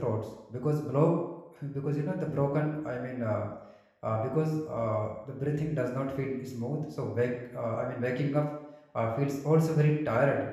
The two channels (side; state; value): both; identical; correlation 1.00